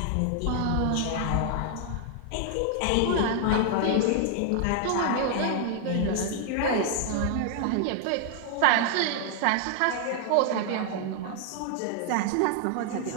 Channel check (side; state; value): both; different; correlation 0.00